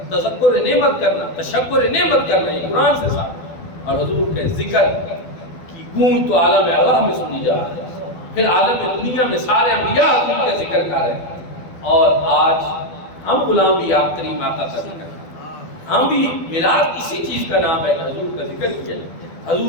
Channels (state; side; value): late; right; 12 ms